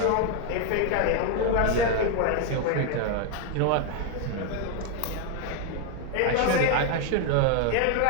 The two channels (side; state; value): both; different; correlation 0.01